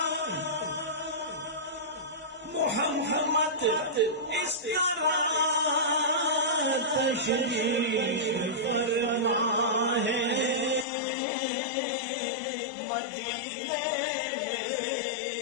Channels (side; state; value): right; drops out; at 10.9 s